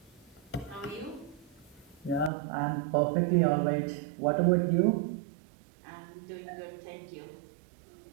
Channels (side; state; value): left; drops out; at 2.3 s